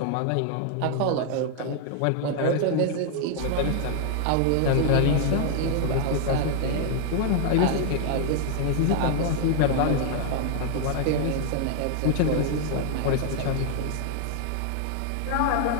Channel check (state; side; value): different; both; correlation 0.00